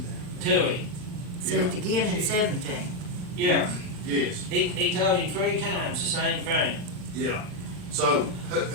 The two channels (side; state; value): left; late; 39 ms